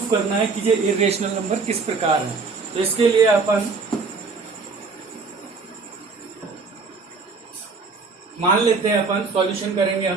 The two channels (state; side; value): quieter; left; 4.4 dB